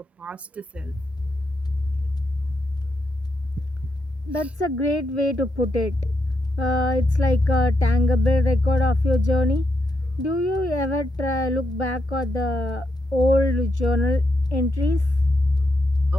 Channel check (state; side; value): normal; both; correlation 0.82